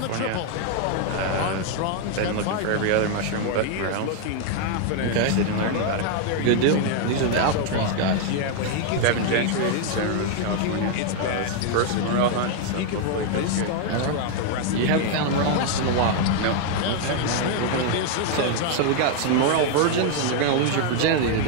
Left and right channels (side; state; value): both; different; correlation 0.00